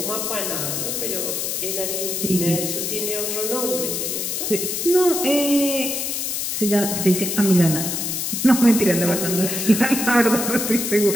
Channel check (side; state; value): left; noise; hiss, 2 dB below the sound